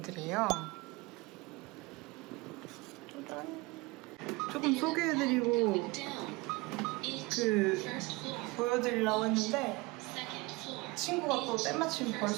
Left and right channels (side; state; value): left; quieter; 23.9 dB